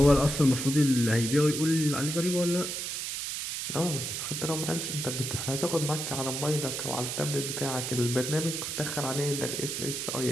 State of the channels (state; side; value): noise; right; hiss, 4 dB below the sound